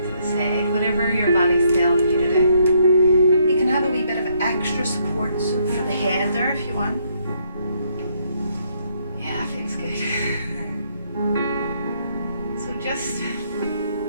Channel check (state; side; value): inverted; both; correlation -0.71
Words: to the side, whatever your body's telling you to do. You can have a wee bit of extra support for the head there if you want. Yeah, feels good. So just